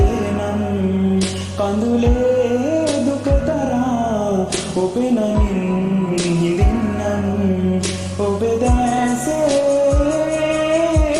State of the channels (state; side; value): identical; both; correlation 1.00